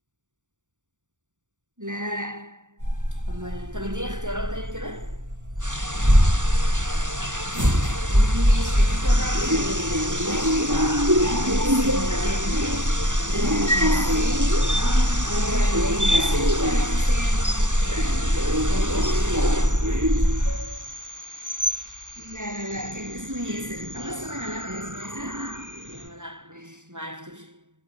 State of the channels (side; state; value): left; late; 0.86 ms